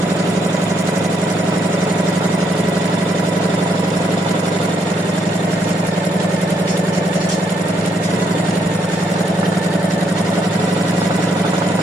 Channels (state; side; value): normal; both; correlation 0.74